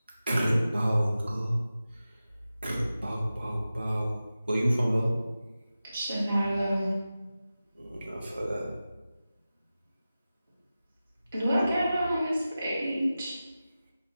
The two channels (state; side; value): inverted; both; correlation -0.94